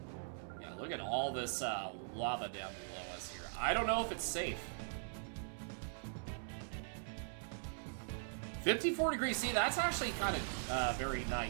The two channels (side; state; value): left; silent; digital silence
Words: Yeah, look at all this lava down below us here. I don't know if it's safe. 54 degrees. See, that's actually kind of very